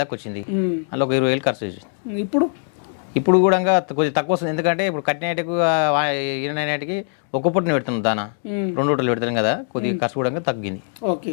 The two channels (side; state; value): right; silent; 60 dB below the other